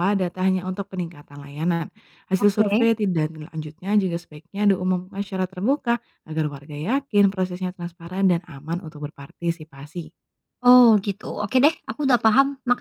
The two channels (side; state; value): both; identical; correlation 1.00